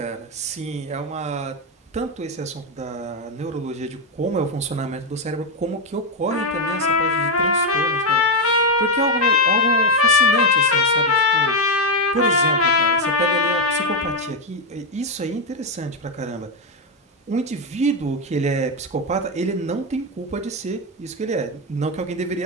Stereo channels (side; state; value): both; normal; correlation 0.06